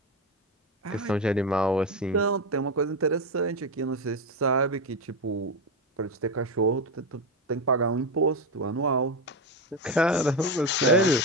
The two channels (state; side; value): normal; both; correlation 0.13